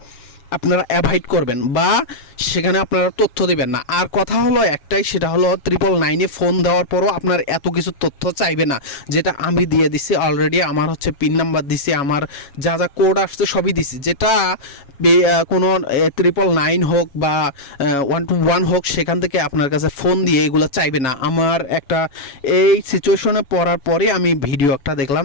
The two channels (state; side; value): late; right; 7.2 ms